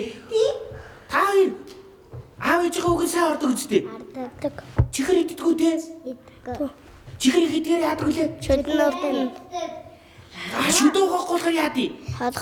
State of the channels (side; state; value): both; identical; correlation 1.00